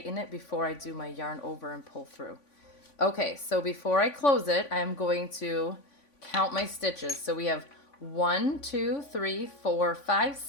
it before I do my yarn over and pull through. Okay, so before I close it, I'm going to count my stitches. So we have 1, 2, 3, 4, 5,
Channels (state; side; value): late; right; 3.5 ms